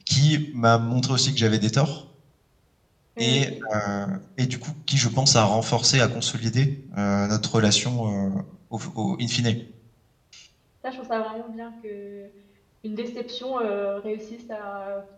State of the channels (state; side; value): identical; both; correlation 1.00